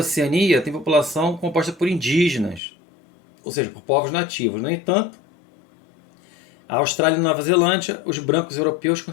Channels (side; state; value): right; drops out; at 2.6 s